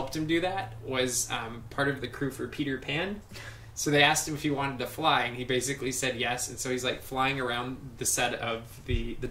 him do that was part of the crew for Peter Pan. So they asked him if he wanted to fly, and he basically said yes. And so he's like flying around the set of the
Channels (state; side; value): identical; both; correlation 1.00